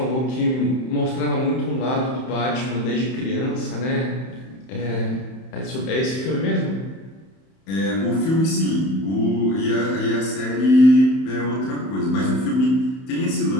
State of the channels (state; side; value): late; right; 31 ms